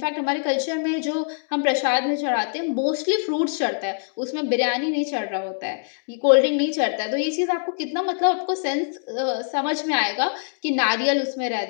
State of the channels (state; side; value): silent; right; digital silence